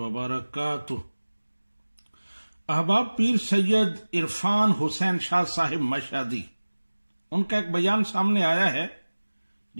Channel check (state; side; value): inverted; both; correlation -1.00